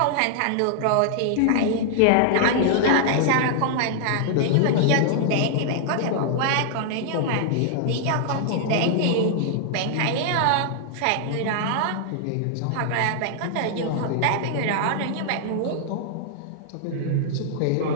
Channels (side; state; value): both; different; correlation -0.01